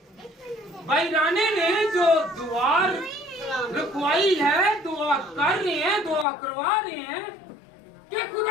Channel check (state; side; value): drops out; right; at 6.2 s